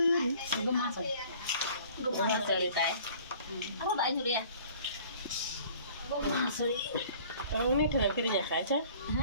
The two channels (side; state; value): both; inverted; correlation -0.51